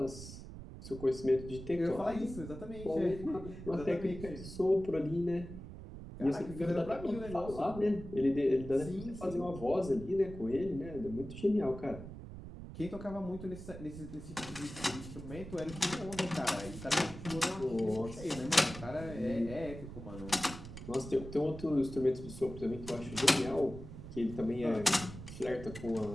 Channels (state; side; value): noise; right; rumble, 12 dB below the sound